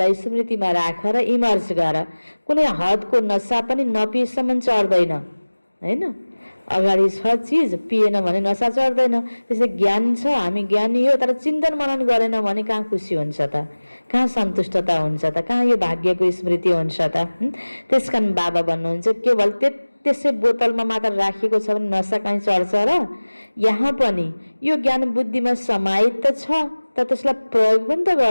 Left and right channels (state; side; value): inverted; both; correlation -1.00